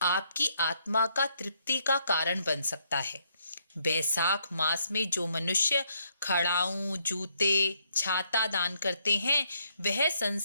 आपकी आत्मा का तृप्ति का कारण बन सकता है। बैसाख मास में जो मनुष्य खड़ाऊं जूते छाता दान करते हैं, वह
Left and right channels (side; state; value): both; inverted; correlation -0.73